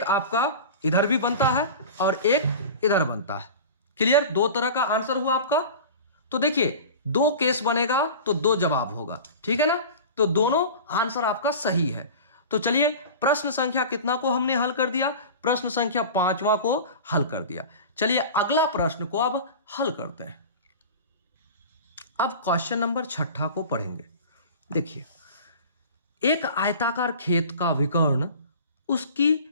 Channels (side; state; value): both; inverted; correlation -0.35